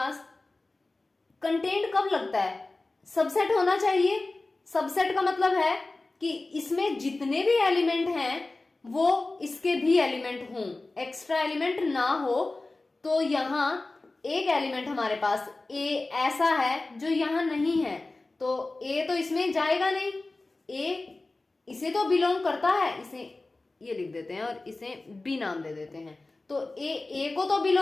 कंटेंट कब लगता है? सबसेट होना चाहिए। सबसेट का मतलब है कि इसमें जितने भी एलिमेंट हैं वो इसके भी एलिमेंट हों, एक्स्ट्रा एलिमेंट ना हो। तो यहां एक एलिमेंट हमारे पास ए ऐसा है जो यहां नहीं है, तो ए तो इसमें जाएगा नहीं। ए इसे तो बिलोंग करता है, इसे ये लिख देते हैं और इसे बी नाम दे देते हैं। तो ए को तो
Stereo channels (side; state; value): right; quieter; 3.2 dB